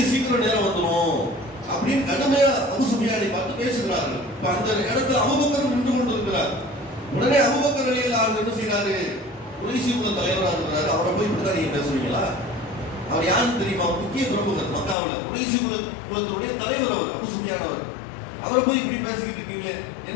சீக்கிரம் நேரம் வந்துடும் அப்படின்னு கடுமையா அபூ சுஃபியானை பார்த்து பேசுகிறார்கள். இப்ப அந்த இடத்துல அபூபக்கர் நின்று கொண்டிருக்கிறார். உடனே அபூபக்கர் ரலியல்லாஹு அன்ஹு என்ன செய்யறாரு? குறைஷி குல தலைவராக இருக்கிறாரு, அவரை போய் இப்படிதான் நீங்க பேசுவீங்களா? அவர் யாருன்னு தெரியுமா? முக்கிய பிரமுகர் மக்காவுல, குறைஷி குலத்தினுடைய தலைவர் அவர், அபூ சுஃபியான் அவர். அவரை போய் இப்படி பேசிக்கிட்டு இருக்கீங்களே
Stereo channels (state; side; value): drops out; right; at 15.0 s